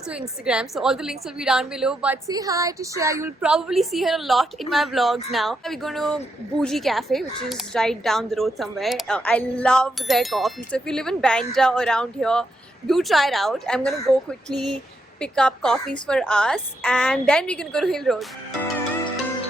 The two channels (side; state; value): both; normal; correlation 0.81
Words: Instagram, so all the links will be down below. But say hi to Shreya. You'll probably see her a lot in my vlogs now. We're going to Bougie Cafe, which is right down the road somewhere. I love their coffee, so if you live in Bandra or around here, do try it out. I'm going to go quickly pick up coffees for us, and then we can go to Hill Road.